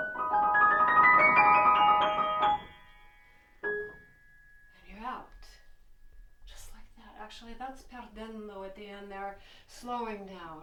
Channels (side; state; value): both; identical; correlation 1.00